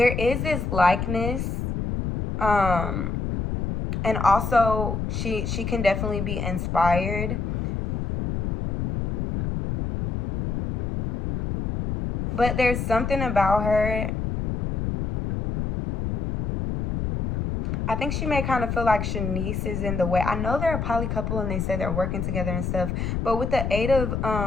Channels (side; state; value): left; noise; rumble, 2 dB below the sound